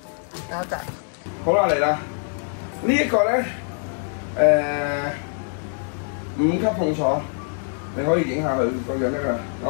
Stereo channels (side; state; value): right; silent; 63 dB below the other